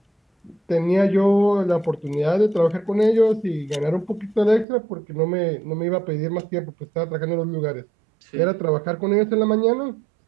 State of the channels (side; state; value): left; drops out; at 4.7 s